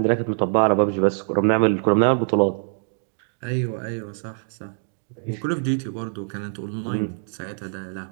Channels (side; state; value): left; silent; digital silence